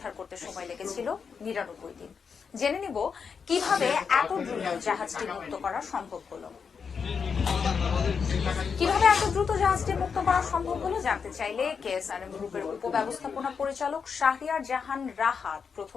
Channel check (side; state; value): right; quieter; 6.0 dB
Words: করতে সময় লেগেছিল 99 দিন। জেনে নিব কিভাবে এত দ্রুত জাহাজটি মুক্ত করা সম্ভব হলো। কিভাবে এত দ্রুত জাহাজটি মুক্ত করা সম্ভব হলো জানতে চাইলে কেএসআরএম গ্রুপের উপব্যবস্থাপনা পরিচালক শাহরিয়ার জাহান রাহাত